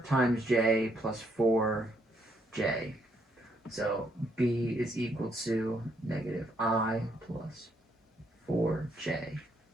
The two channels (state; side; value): normal; both; correlation 0.73